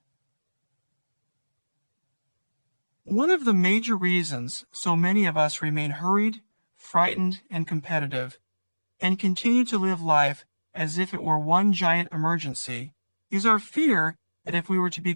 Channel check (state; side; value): inverted; both; correlation -1.00